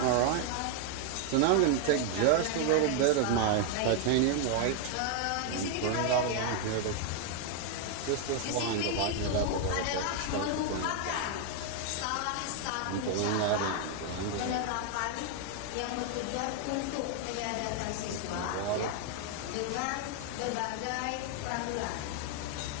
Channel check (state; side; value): different; both; correlation 0.00